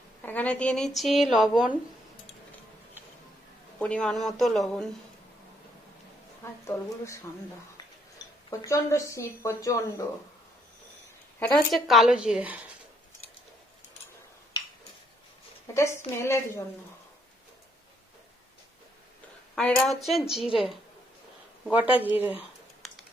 এখানে দিয়ে নিচ্ছি লবণ, পরিমাণ মতো লবণ। আর তলগুলো ঠান্ডা, প্রচন্ড শীত, প্রচন্ড। এটা হচ্ছে কালো জিরে, এটা স্মেলের জন্য। আর এটা হচ্ছে জিরে, গোটা জিরে।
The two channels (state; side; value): normal; both; correlation 0.71